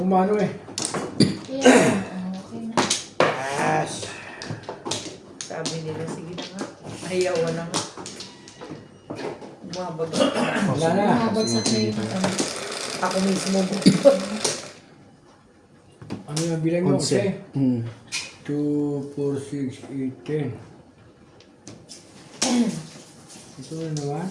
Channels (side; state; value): both; identical; correlation 1.00